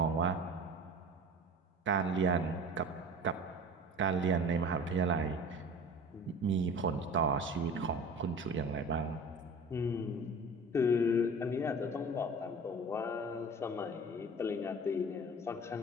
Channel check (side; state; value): both; normal; correlation 0.39